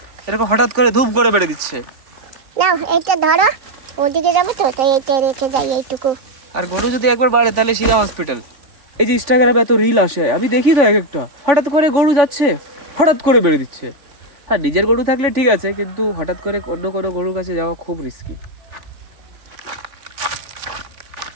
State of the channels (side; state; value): left; late; 3.5 ms